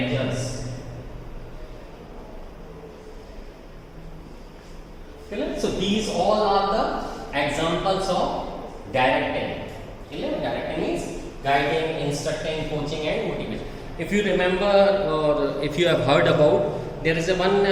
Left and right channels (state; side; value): identical; both; correlation 1.00